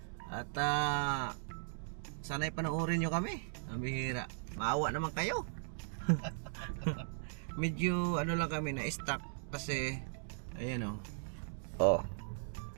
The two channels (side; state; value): left; silent; digital silence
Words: At sana'y panoorin nyo kami. Ang bihira. Maawa naman kayo. Medyo ano lang kami na-stuck kasi ayan oh.